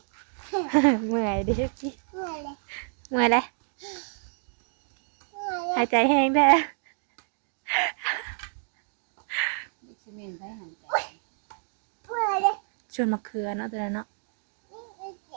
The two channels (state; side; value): silent; left; 59 dB below the other